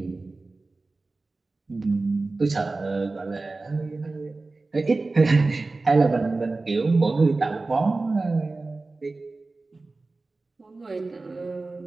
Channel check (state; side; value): quieter; left; 3.4 dB